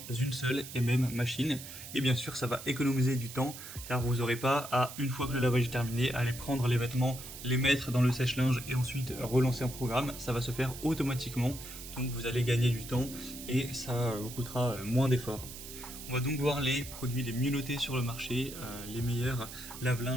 une seule et même machine. Et bien sûr, ça va économiser du temps, car vous n'aurez pas à, une fois que le lavage est terminé, aller prendre les vêtements, les mettre dans le sèche-linge et ensuite relancer un programme. Ça va se faire automatiquement, donc vous allez gagner du temps et ça vous coûtera moins d'efforts. On va donc voir les produits les mieux notés sur le marché, les meilleurs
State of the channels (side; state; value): right; noise; hiss, 12 dB below the sound